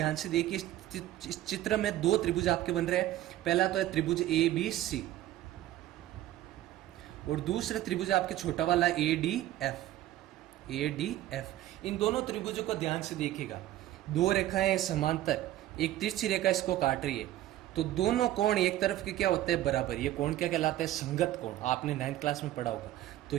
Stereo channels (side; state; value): left; quieter; 14.0 dB